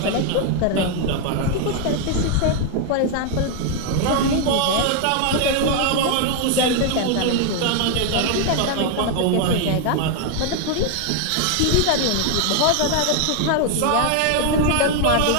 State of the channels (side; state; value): both; different; correlation 0.01